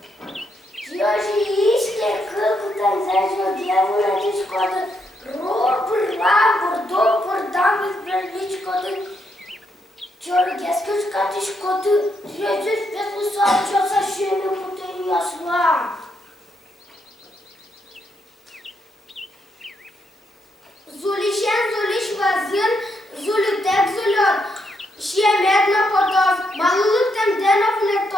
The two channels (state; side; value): normal; both; correlation 0.78